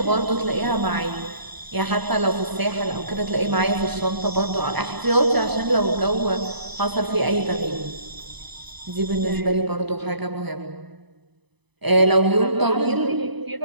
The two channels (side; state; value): left; late; 0.99 ms